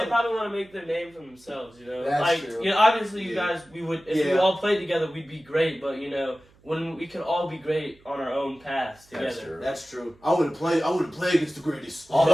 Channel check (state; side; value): noise; right; hum, 29 dB below the sound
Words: probably want to make their name for themselves, That's true. Obviously you guys, we would, if we Yeah. all played together, we'd be great, but when we could all be great on our own paths together. That's true. That's true. I wouldn't play against the greatest.